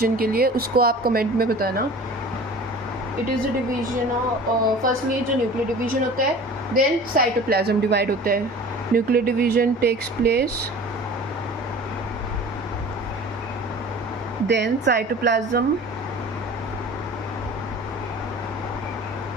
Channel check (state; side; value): normal; both; correlation 0.42